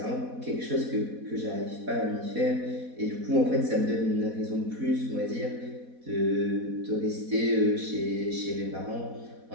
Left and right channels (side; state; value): left; late; 4.1 ms